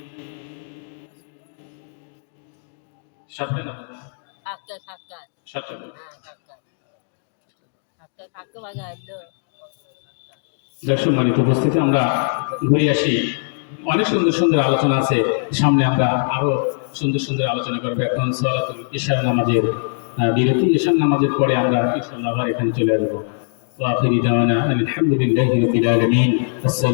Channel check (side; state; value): right; silent; digital silence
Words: সাতটা না বাবা? সাতটা না। সম্মানিত উপস্থিতি, আমরা ঘুরে আসি। অনেক সুন্দর সুন্দর আলোচনা আছে সামনে, আমরা আরো সুন্দর সুন্দর আলোচনা করবো। এখন সালাতুল ইশার নামাজের বিরতি, ইশার নামাজের পরে আমরা ইনশাআল্লাহ আবার এখানে চলে আসবো। ওয়া আখিরু দাওয়ানা আলহামদুলিল্লাহি রাব্বিল আলামিন।